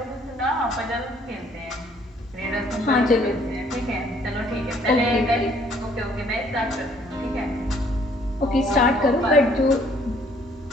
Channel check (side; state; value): both; normal; correlation 0.62